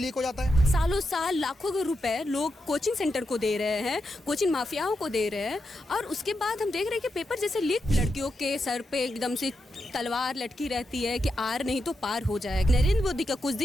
हो जाता है। सालों साल लाखों रुपए लोग कोचिंग सेंटर को दे रहे हैं, कोचिंग माफियाओं को दे रहे हैं, और उसके बाद हम देख रहे हैं कि पेपर जैसे लीक, लड़कियों के सर पे एकदम से तलवार लटकी रहती है कि आर नहीं तो पार हो जाएगा। नरेंद्र मोदी का कुछ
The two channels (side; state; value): both; normal; correlation 0.86